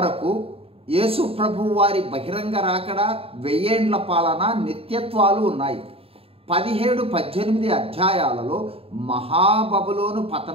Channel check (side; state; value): left; late; 0.28 ms